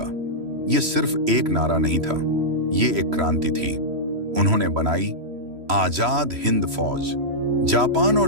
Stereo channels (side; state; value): left; late; 3.1 ms